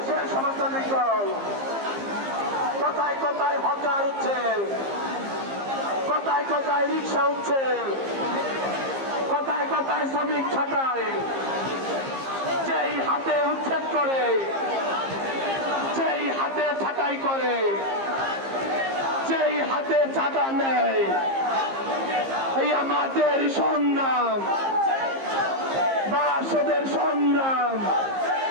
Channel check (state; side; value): late; left; 15 ms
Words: সমাজতান্ত্রিক দল কোথায় কোথায় হকার উঠছে, কোথায় কোথায় রিক্সা উঠছে, কোথায় কোথায় শ্রমিক ছাটায়, যেই হাতে উচ্ছেদ করে, যেই হাতে ছাটাই করে, যেই হাতে চাঁদা নেয়, এই আমাদের সংগ্রাম, বাসদের সংগ্রাম।